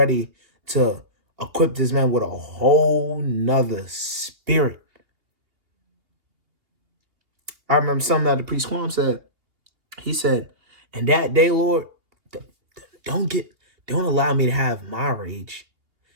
to equip this man with a whole nother spirit. I remember something that the priest Quam said. He said, "And that day, Lord, don't allow me to have my rage.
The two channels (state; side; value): late; left; 2.8 ms